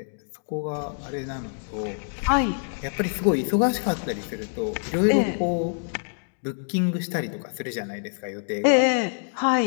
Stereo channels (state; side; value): silent; right; digital silence